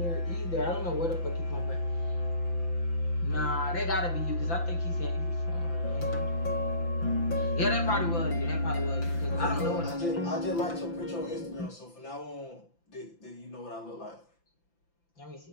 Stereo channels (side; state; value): right; late; 5.9 ms